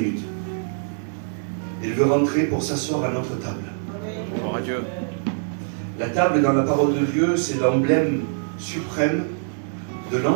Il veut rentrer pour s'asseoir à notre table. Gloire à Dieu. La table dans la parole de Dieu, c'est l'emblème suprême de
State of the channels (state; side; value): silent; left; digital silence